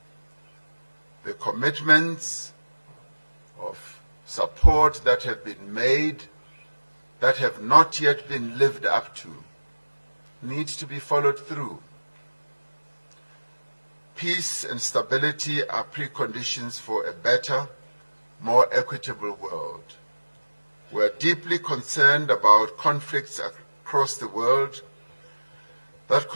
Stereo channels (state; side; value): inverted; both; correlation -1.00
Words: The commitments of support that have been made, that have not yet been lived up to, need to be followed through. Peace and stability are preconditions for a better, more equitable world. We are deeply concerned about conflicts across the world that